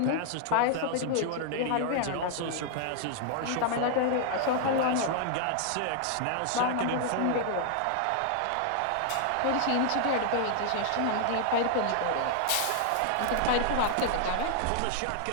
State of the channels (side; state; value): both; different; correlation -0.01